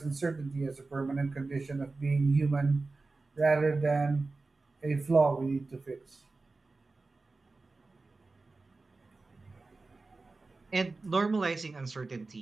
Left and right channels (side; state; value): left; quieter; 3.6 dB